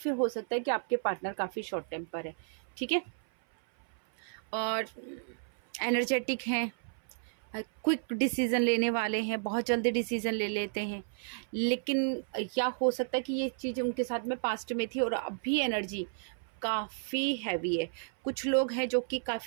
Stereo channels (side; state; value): left; silent; 56 dB below the other